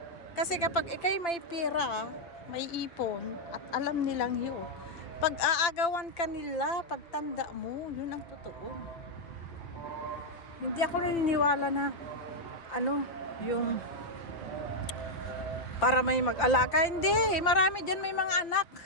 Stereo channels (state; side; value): late; right; 5.9 ms